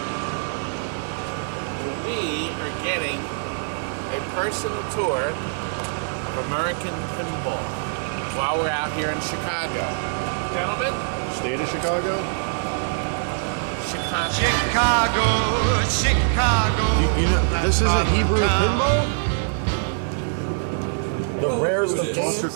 We are getting a personal tour of American Pinball while we're out here in Chicago. Gentlemen? State of Chicago? Chicago. You know, this isn't Hebrew pinball? The rarest of Foster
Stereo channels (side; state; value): left; silent; 63 dB below the other